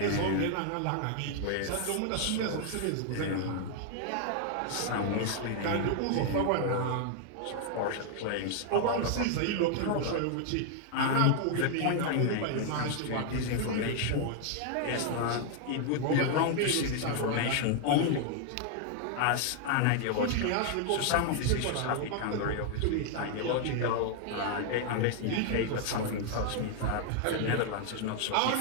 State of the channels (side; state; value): both; different; correlation 0.00